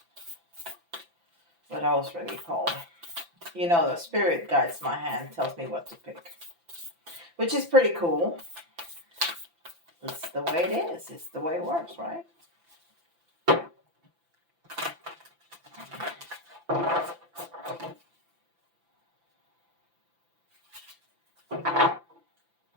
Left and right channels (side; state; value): left; late; 5.9 ms